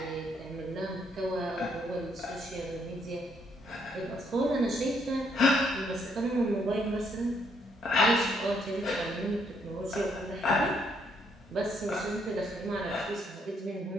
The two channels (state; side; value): normal; both; correlation 0.71